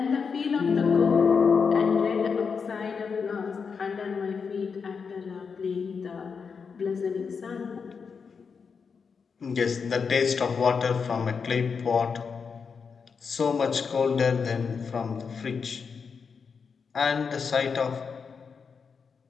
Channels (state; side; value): quieter; right; 5.7 dB